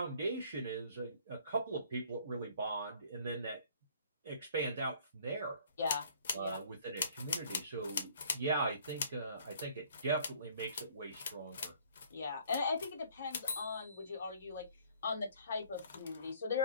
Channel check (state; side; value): inverted; both; correlation -0.58